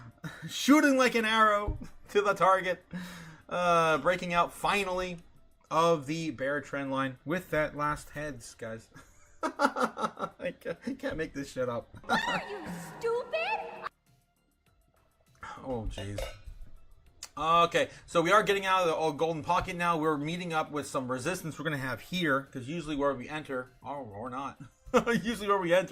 shooting like an arrow to the target, breaking out finally of the bear trend line with that last heads, guys. I can't make this shit up. What are you, stupid? Oh, jeez. Okay, so we are getting out of the golden pocket now. We're meeting up with some resistance we're going to have here, because usually where we enter, or not, usually where we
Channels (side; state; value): both; identical; correlation 1.00